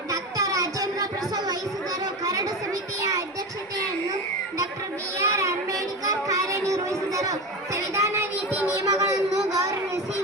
ರಾಜೇಂದ್ರ ಪ್ರಸಾದ್ ವಹಿಸಿದರು. ಕರಡು ಸಮಿತಿಯ ಅಧ್ಯಕ್ಷತೆಯನ್ನು ಡಾಕ್ಟರ್ ಬಿ.ಆರ್. ಅಂಬೇಡ್ಕರ್ ಕಾರ್ಯನಿರ್ವಹಿಸಿದರು. ಸಂವಿಧಾನ ನೀತಿ ನಿಯಮಗಳನ್ನು ಗೌರವಿಸಿ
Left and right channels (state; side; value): normal; both; correlation 0.23